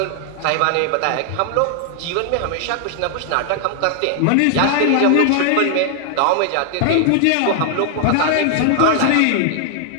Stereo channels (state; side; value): different; both; correlation 0.00